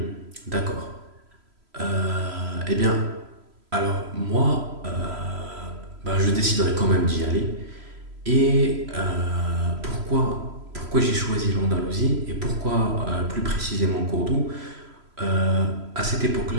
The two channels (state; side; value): late; left; 3.0 ms